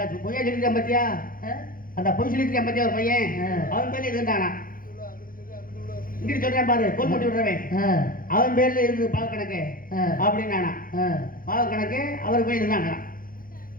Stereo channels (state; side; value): late; right; 0.41 ms